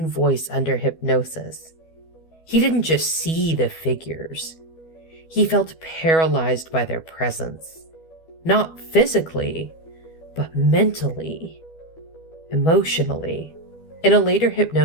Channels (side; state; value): right; late; 12 ms